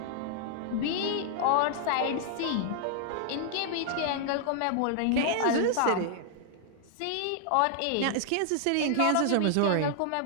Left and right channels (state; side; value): different; both; correlation -0.01